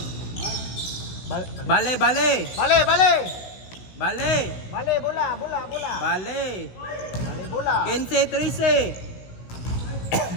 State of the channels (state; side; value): late; right; 16 ms